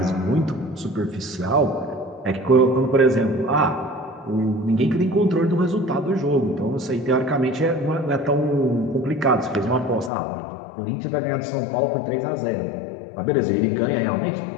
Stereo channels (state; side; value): drops out; right; at 10.1 s